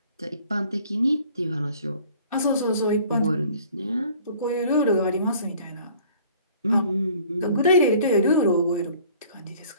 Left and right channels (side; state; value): both; inverted; correlation -0.53